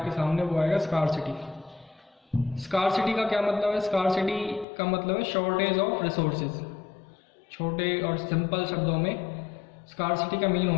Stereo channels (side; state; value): right; drops out; at 4.7 s